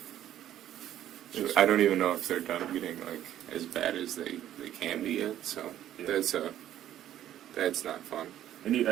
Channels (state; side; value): quieter; left; 11.9 dB